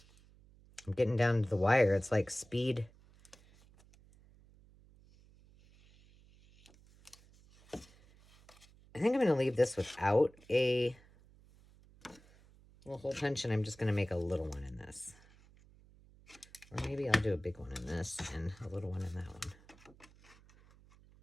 I'm getting down to the wire. It's like speed. I think I'm going to leave this without a little hole punch, and I'm just going to make a little one in this. Or maybe I'll do a big one in this and a little one in that one.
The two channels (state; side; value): noise; right; hum, 26 dB below the sound